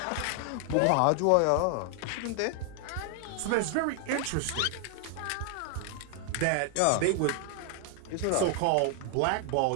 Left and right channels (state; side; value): different; both; correlation 0.00